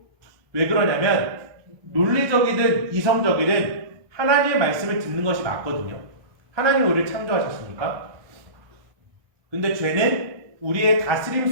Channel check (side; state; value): left; late; 1.2 ms